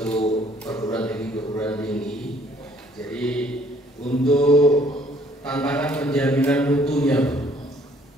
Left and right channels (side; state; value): both; normal; correlation 0.61